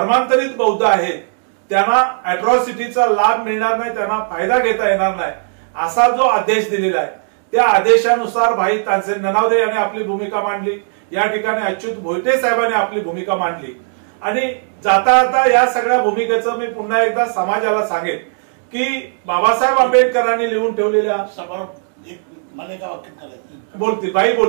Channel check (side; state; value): left; silent; digital silence